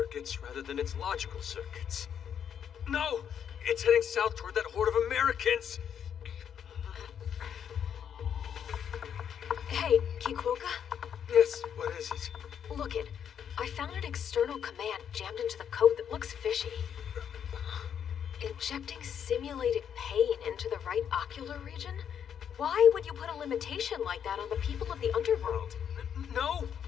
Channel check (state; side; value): quieter; right; 8.4 dB